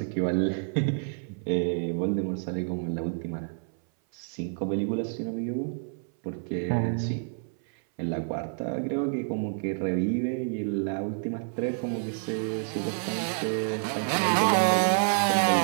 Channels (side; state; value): left; silent; 59 dB below the other